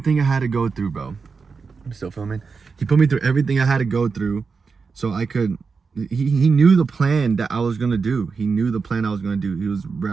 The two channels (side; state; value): left; quieter; 5.0 dB